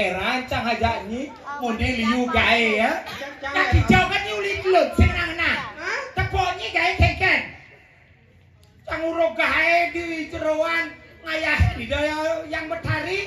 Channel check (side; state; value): both; identical; correlation 1.00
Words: aja ni model liu gae ya. Kaki jauh kan ni ulit lut senang nah. Tepoknya gae keken. Canguro gae di jeroan ngayah di daya yang